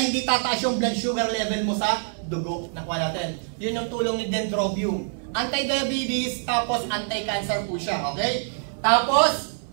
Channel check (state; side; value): silent; left; 57 dB below the other